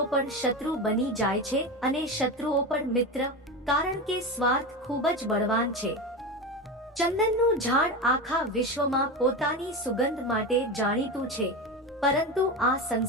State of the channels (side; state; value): both; normal; correlation 0.22